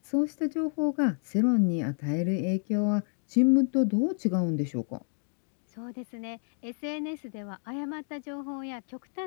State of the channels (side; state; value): right; silent; 58 dB below the other